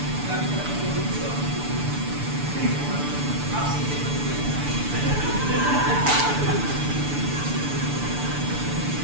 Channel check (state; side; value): late; left; 6.9 ms